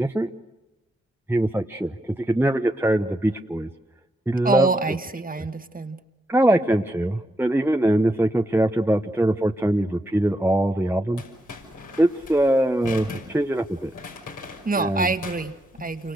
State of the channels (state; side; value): normal; both; correlation 0.82